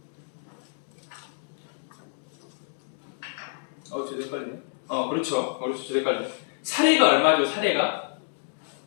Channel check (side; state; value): right; silent; digital silence